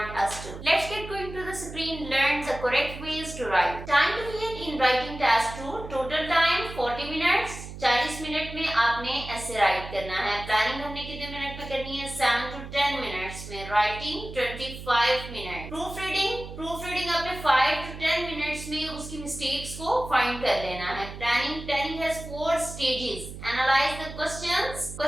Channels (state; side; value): noise; right; hum, 11 dB below the sound